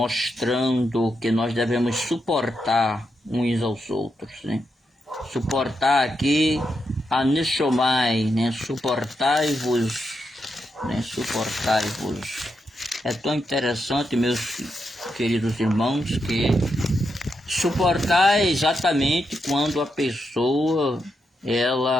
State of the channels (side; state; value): both; normal; correlation 0.84